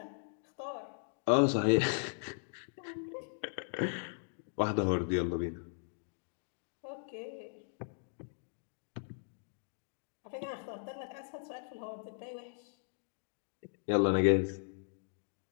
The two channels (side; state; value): right; silent; digital silence